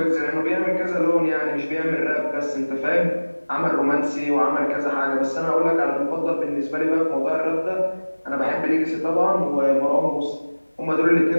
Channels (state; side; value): inverted; both; correlation -1.00